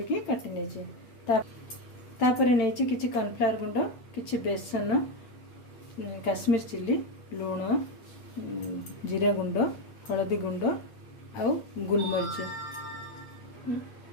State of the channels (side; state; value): right; late; 8.8 ms